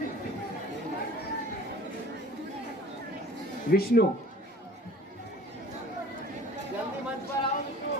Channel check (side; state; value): both; normal; correlation 0.46